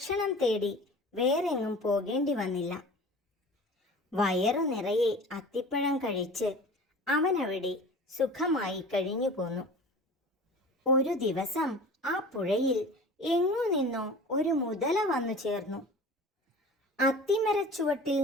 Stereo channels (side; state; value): both; normal; correlation 0.39